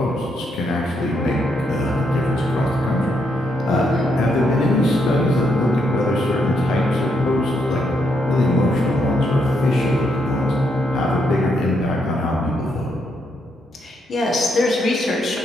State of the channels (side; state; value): both; normal; correlation 0.77